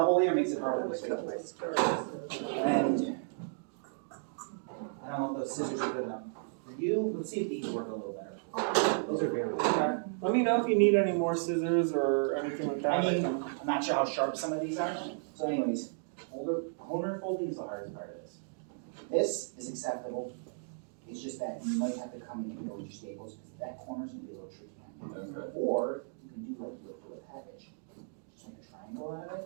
layer makes it harder I'm to gonna cut my switch. stars. And I don't know if those scissors are good enough for you. Let's see if these work a little better. Those are very good. Let me know if you need any more scissors or anything like that. I mean, I'm not sure how sharp some of these are. So anyways, corner folding is the hardest part of this. This is acceptable. It's just that you might have to come in here with your staples because that corner's gonna be a little tricky. Okay. Or you can do like you would for a package. Just make a triangle out of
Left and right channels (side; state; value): left; silent; digital silence